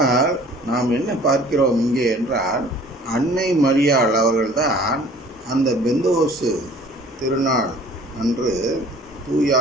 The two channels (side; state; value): both; normal; correlation 0.50